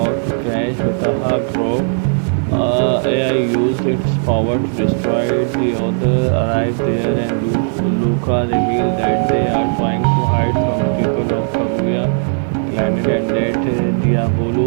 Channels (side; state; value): left; silent; digital silence